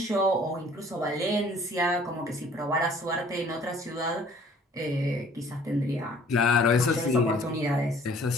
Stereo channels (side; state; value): both; normal; correlation 0.55